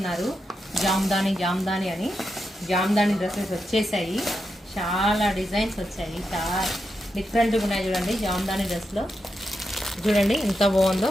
జామ్దాని అని. జామ్దాని డ్రెస్సెస్ వచ్చేసాయి. చాలా డిజైన్స్ వచ్చాయి, చాలా డిఫరెంట్గా ఉన్నాయి. చూడండి జామ్దాని డ్రెస్లో చూడండి ఎంత బాగుందో.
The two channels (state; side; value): normal; both; correlation 0.86